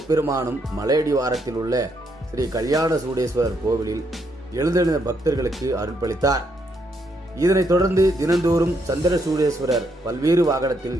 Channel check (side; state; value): both; normal; correlation 0.76